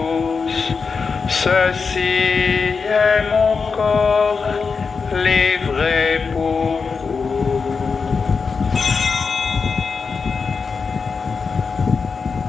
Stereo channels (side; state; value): right; quieter; 5.1 dB